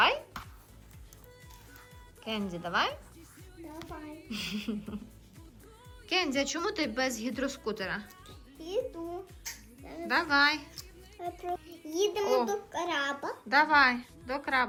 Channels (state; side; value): identical; both; correlation 1.00